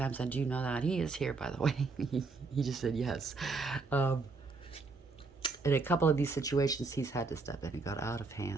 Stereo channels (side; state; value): left; quieter; 4.0 dB